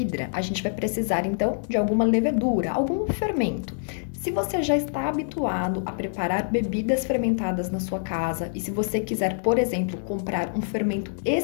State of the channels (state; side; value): silent; right; digital silence